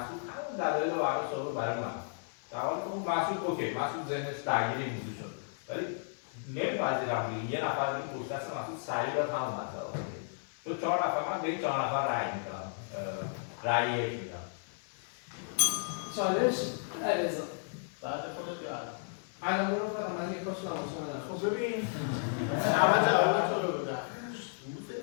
همون دلایل رو برای صحبت برای من. در حالی که اون مسعود اوکی، مسعود ذهنش درگیر این موضوع شد. ولی نمی‌پذیرم دیگه یه نفر این پشت دست مسعود سریع داد همون مسئله رو. چون 4 نفر من به این 4 نفر رأی میدم. رأی 1 میدم. چالش علیرضا بعد خودت یاد. الان برو فقط من یک کاش نماشم. خب ببین اول جواب تو رو بدم. روز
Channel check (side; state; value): right; silent; 55 dB below the other